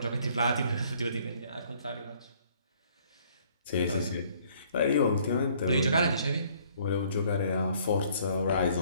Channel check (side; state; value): both; inverted; correlation -0.61